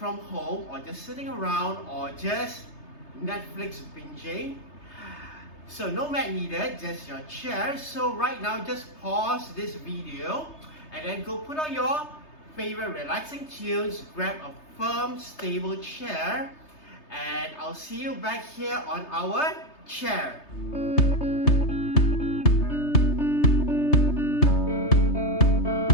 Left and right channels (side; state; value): right; late; 3.3 ms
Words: home or just sitting around or just Netflix binging. So no mat needed, just your chair. So right now just pause this video and then go put on your favorite relaxing tunes, grab a firm stable chair, and I'll see you back here on our chair.